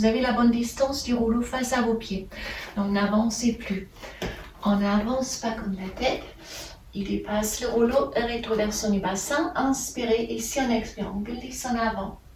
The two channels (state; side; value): identical; both; correlation 1.00